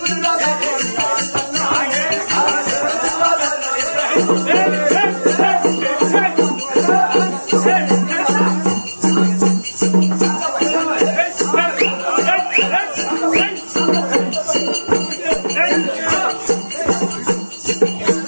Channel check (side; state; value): both; inverted; correlation -1.00